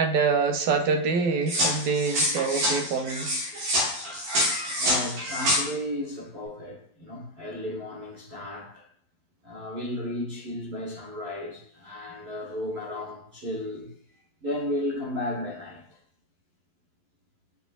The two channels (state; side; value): late; left; 11 ms